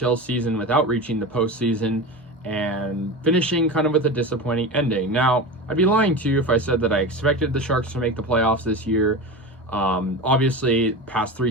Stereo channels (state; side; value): normal; both; correlation 0.26